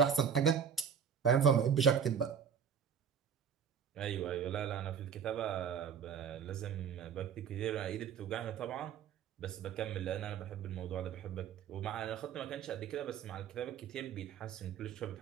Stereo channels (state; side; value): quieter; left; 7.5 dB